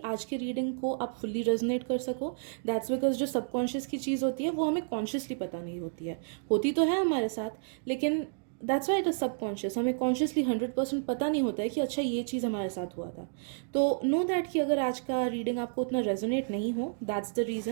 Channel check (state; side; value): silent; left; digital silence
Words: आज के रीडिंग को आप फुल्ली रेजोनेट कर सको। दैट्स बिकॉज जो सबकॉन्शियस की चीज़ होती है वो हमें कॉन्शियसली पता नहीं होती है, होती तो है हमारे साथ, लेकिन that's why it is subconscious. हमें कॉन्शियसली 100% पता नहीं होता है कि अच्छा ये चीज़ हमारे साथ हुआ था। तो नो दैट कि अगर आज का रीडिंग आपको उतना रेजोनेट नहीं हो, दैट्स द